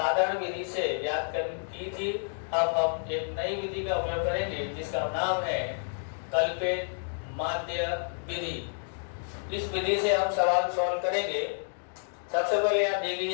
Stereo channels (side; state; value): right; silent; digital silence